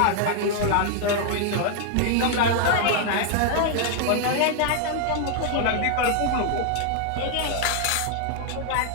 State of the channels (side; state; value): both; different; correlation 0.00